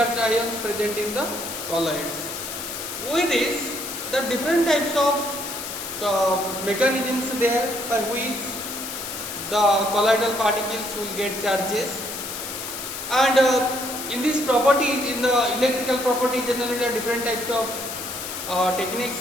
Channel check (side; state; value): left; noise; hiss, 7 dB below the sound